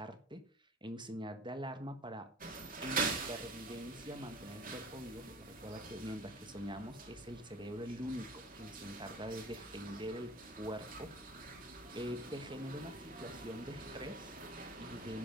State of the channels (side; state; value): both; normal; correlation 0.41